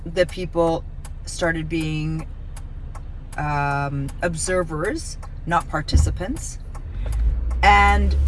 the people started being observers, not participants. And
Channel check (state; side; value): identical; both; correlation 1.00